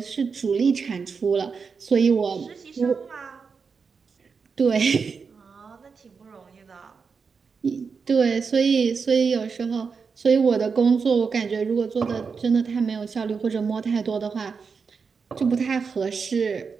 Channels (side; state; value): left; quieter; 5.4 dB